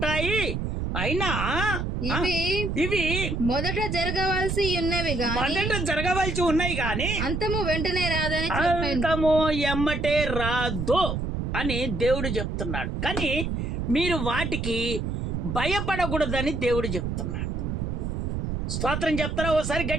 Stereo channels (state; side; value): noise; right; rumble, 2 dB below the sound